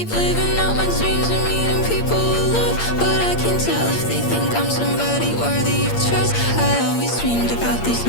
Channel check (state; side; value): late; right; 8.7 ms